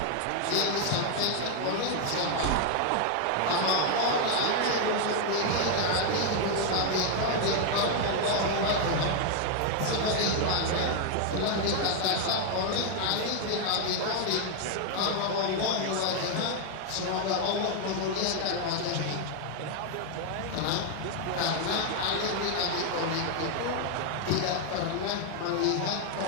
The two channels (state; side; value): different; both; correlation 0.00